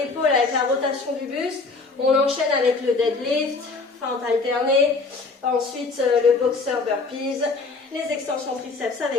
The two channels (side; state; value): right; quieter; 3.9 dB